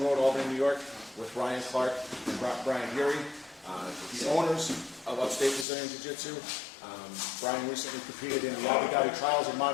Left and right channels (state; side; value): drops out; right; at 5.7 s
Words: Road, Albany, New York, with Ryan Clark and Brian Beaury, the owners of Upstate Brazilian Jiu-Jitsu. Brian recently competed in the Abu Dhabi trials in